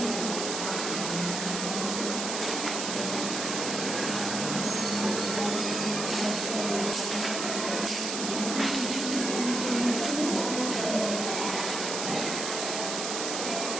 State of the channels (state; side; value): noise; right; hiss, 3 dB below the sound